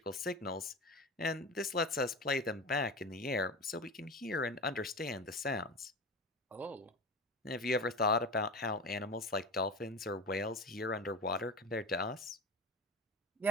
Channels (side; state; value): both; normal; correlation 0.28